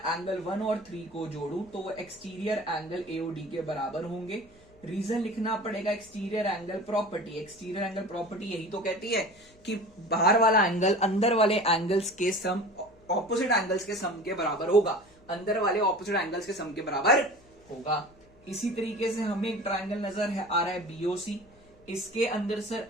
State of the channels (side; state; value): left; noise; hum, 28 dB below the sound